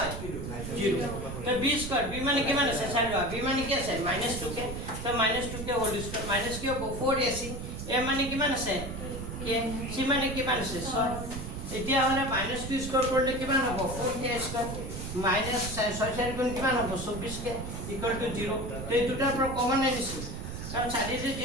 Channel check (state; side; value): noise; right; rumble, 7 dB below the sound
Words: 0 তো b স্কয়ার b মানে কিমান আছে চাই লোৱা b মানে কি আছে -2k তো -2k হোল স্কয়ার মাইনাস কি হ'ব 4ac a মানে কিমান আছে k c মানে কিমান আছে 6 এতিয়া হলে -2 স্কয়ার কৰিলে কিমান হ'ব 4k স্কয়ার মাইনাস 6 গুণ কিমান হ'ব 24k ইকুয়াল টু 0 তো এই দুটাৰ পৰা কমন আনিছো কাৰণ চাৰিৰে